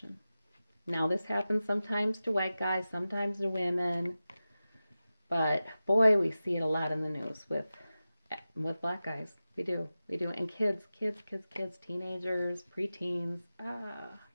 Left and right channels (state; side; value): inverted; both; correlation -0.95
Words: Now, this happens sometimes to white guys, sometimes to women, but boy, we see it a lot in the news with black guys. We do, and kids, teenagers, preteens.